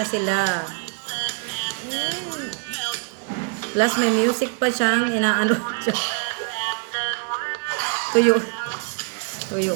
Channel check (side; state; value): left; quieter; 37.1 dB